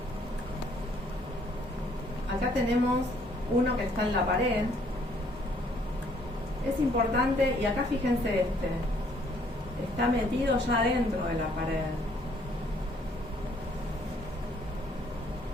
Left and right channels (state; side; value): normal; both; correlation 0.64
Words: Acá tenemos uno que está en la pared. Es importante, y acá fíjense este. Está metido ya dentro de la pared.